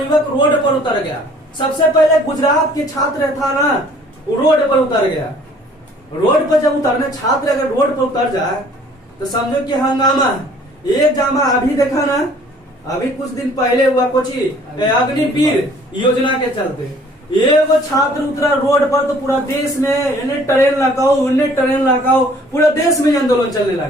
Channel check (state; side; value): normal; both; correlation 0.55